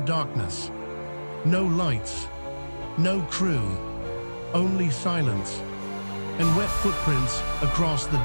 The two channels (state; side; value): inverted; both; correlation -1.00